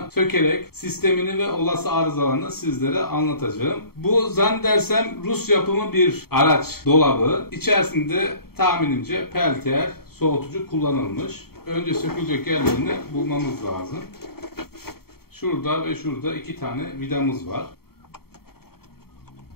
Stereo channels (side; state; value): right; late; 0.95 ms